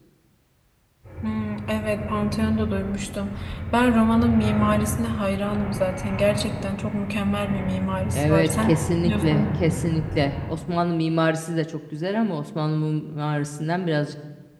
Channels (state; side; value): identical; both; correlation 1.00